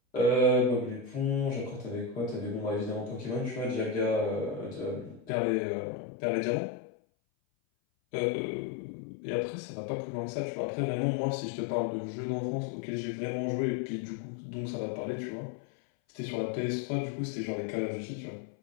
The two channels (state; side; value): drops out; right; at 5.3 s